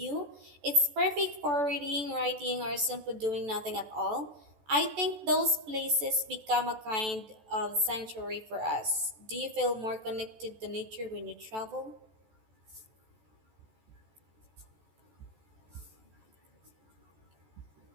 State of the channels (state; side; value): late; left; 14 ms